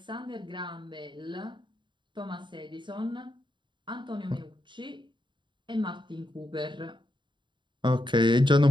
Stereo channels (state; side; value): late; left; 0.23 ms